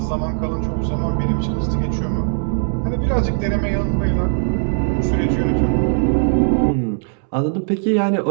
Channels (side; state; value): left; silent; 66 dB below the other